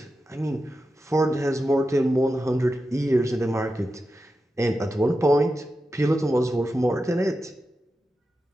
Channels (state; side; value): normal; both; correlation 0.91